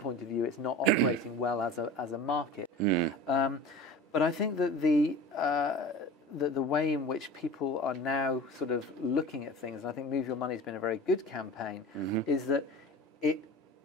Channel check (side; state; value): both; normal; correlation 0.37